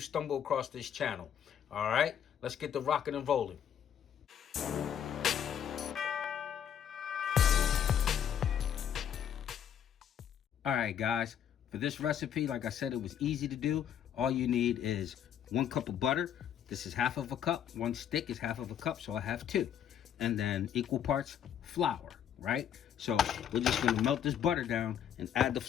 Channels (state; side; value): quieter; right; 9.2 dB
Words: stumbled across this channel. All right, let's get the rocking and rolling. All right, guys. For this recipe, like I said, it was easy to do. All you need is 1 cup of butter. This is half of a cup. 1 stick is half of a cup, so I have 2. And then equal parts flour, right? So we're just gonna melt this butter down and add the